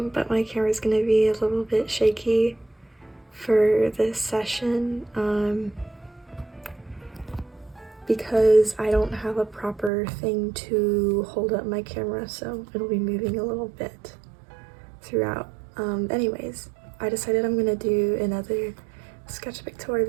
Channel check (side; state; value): left; drops out; at 9.9 s